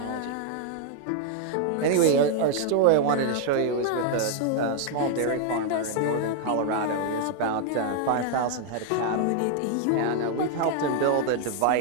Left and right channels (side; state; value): both; different; correlation 0.00